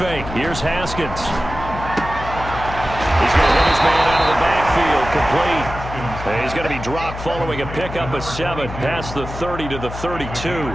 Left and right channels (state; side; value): noise; left; hum, 10 dB below the sound